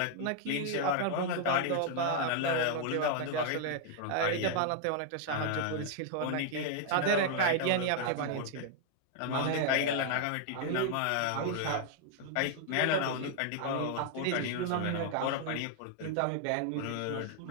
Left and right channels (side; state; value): both; different; correlation 0.00